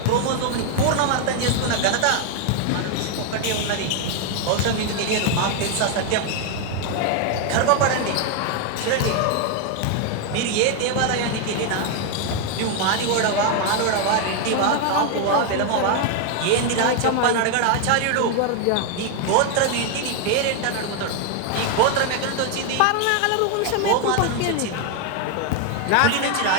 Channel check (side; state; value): both; different; correlation 0.01